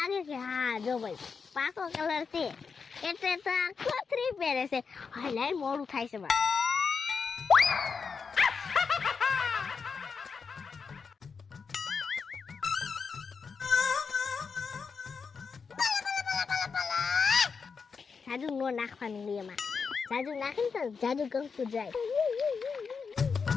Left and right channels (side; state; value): right; quieter; 5.5 dB